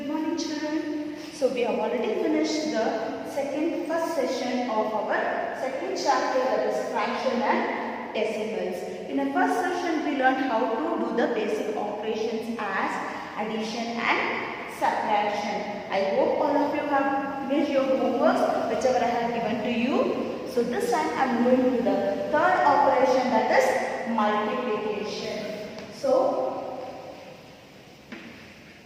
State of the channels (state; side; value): identical; both; correlation 1.00